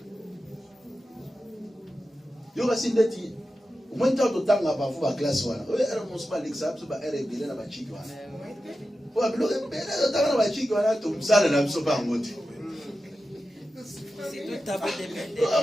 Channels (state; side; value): normal; both; correlation 0.92